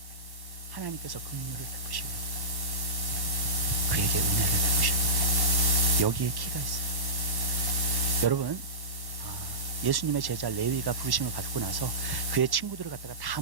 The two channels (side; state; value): left; late; 1.1 ms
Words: 하나님께서 긍휼을 베푸시려고, 그에게 은혜를 베푸시려고. 여기에 키가 있어요. 여러분, 예수님의 제자 레위가 부르심을 받고 나서 그의 친구들을 갖다가 다